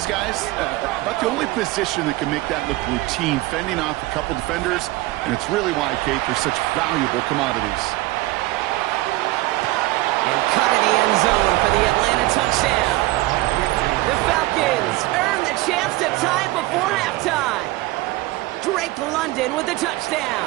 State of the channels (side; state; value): left; quieter; 19.0 dB